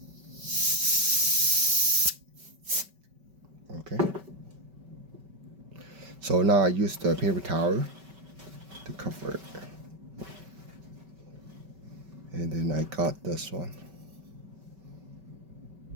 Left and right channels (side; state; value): left; late; 5.2 ms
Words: Okay. So now I use the paper towel to cover it. And then I got this one.